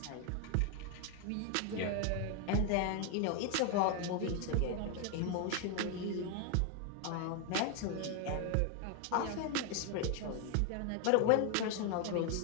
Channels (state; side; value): different; both; correlation 0.01